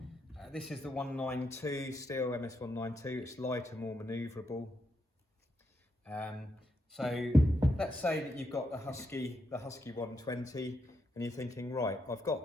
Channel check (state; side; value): normal; both; correlation 0.81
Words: This is the 192 Stihl MS 192. It's lighter, more manoeuvrable. So let's say that you've got the Husky 120, and you're thinking, right, I've